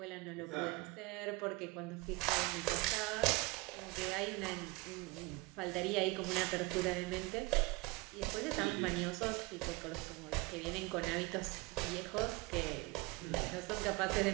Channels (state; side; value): quieter; left; 24.1 dB